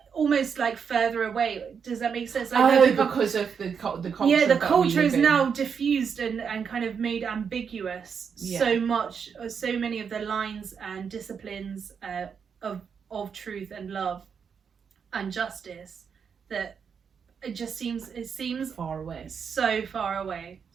almost like further away. Does that make sense? Like, because of the culture. Yeah, the culture is now diffused and kind of made ambiguous so much. So many of the lines and disciplines of truth and love and justice that it seems far away, so far away,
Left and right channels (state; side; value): quieter; left; 6.6 dB